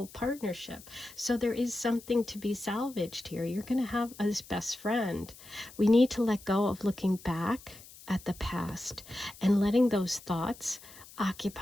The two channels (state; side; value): noise; left; hiss, 19 dB below the sound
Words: partnership. So there is something to be salvaged here. You're going to have this best friend. We need to let go of looking back at the past and letting those thoughts